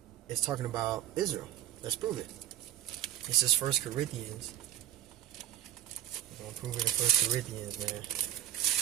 is talking about Israel. Let's prove it. This is 1 Corinthians. We're going to prove it in 1 Corinthians, man.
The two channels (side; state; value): left; quieter; 11.9 dB